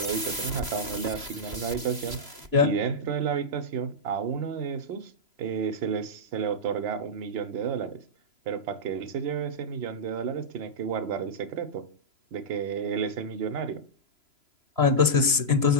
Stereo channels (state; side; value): late; left; 3.0 ms